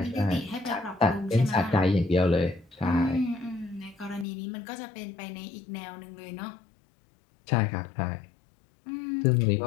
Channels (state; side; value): drops out; right; at 4.2 s